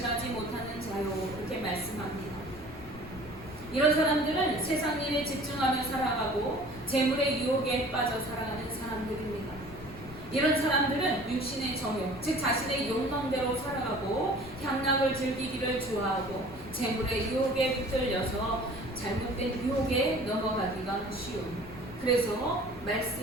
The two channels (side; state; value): left; noise; rumble, 17 dB below the sound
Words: 못하는 자요, 이렇게 말씀합니다. 이런 사람들은 세상 일에 집중하며 살아가고 재물의 유혹에 빠져 살아가는 사람들입니다. 이런 사람들은 육신의 정욕, 즉 자신의 욕망대로 살아가고 향락을 즐기기를 좋아하고 재물의 유혹에 붙들려서 잘못된 유혹에 넘어가기가 쉬운, 그래서